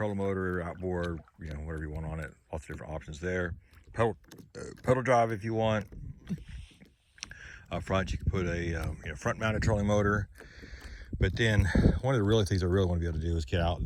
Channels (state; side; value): identical; both; correlation 1.00